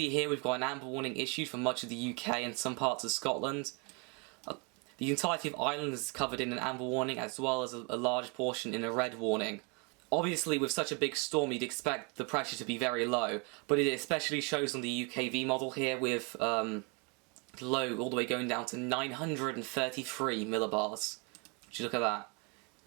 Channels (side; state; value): left; quieter; 32.9 dB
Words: here, we've got an amber warning issued for much of the UK and some parts of Scotland. The entirety of Ireland is covered in an amber warning, as well as a large portion in a red warning. Obviously, with such a big storm, you'd expect the pressure to be very low, but it especially shows on the UKV model here with low all the way going down to 933 millibars. Would you look at that?